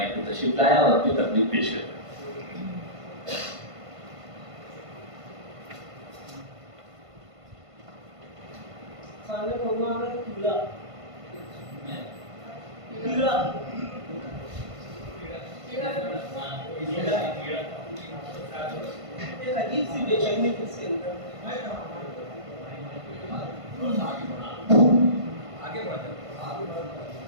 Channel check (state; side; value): late; left; 1.5 ms